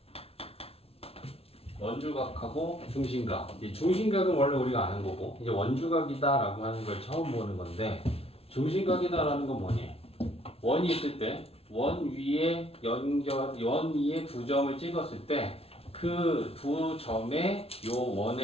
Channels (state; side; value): late; right; 0.29 ms